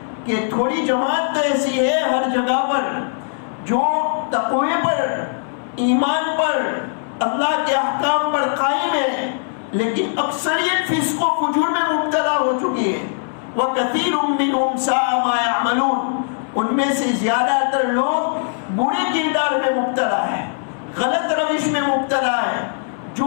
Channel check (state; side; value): silent; right; 59 dB below the other